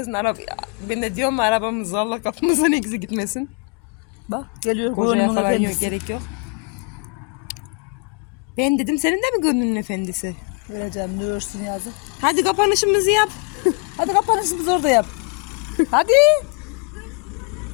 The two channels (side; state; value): right; quieter; 34.6 dB